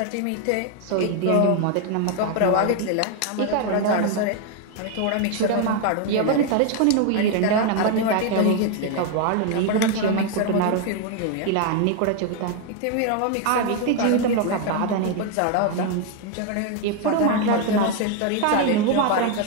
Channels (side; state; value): both; different; correlation 0.01